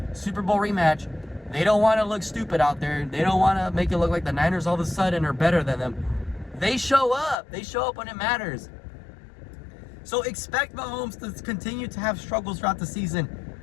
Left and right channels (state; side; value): drops out; right; at 7.4 s